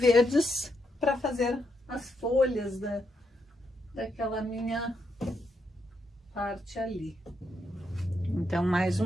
para fazer as folhas daquela minha parte ali. Então, mais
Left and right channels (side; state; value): both; normal; correlation 0.80